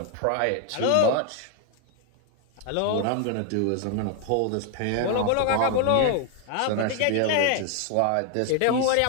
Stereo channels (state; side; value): different; both; correlation 0.00